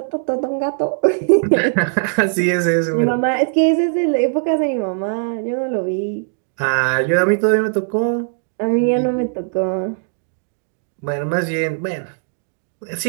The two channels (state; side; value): silent; left; digital silence